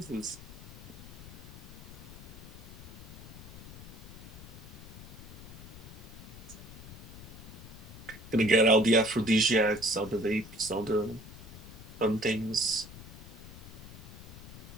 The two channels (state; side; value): noise; left; rumble, 14 dB below the sound